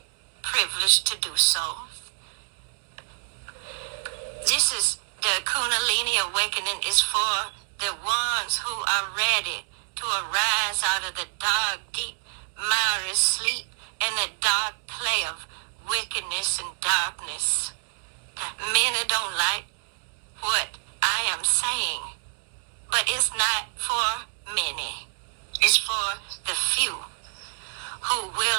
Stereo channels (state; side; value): silent; left; digital silence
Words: privilege to do so. This is the Kundalini awakening is for the ones who are ready to arise out of the dark, deep, miry sleep and the dark play of wickedness and darkness. Many don't like what I am saying, but it's not for many. It's for the few who